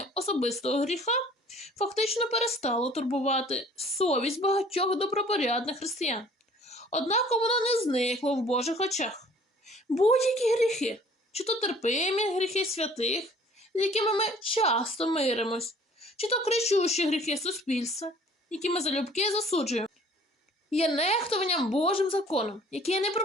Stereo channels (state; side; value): normal; both; correlation 0.53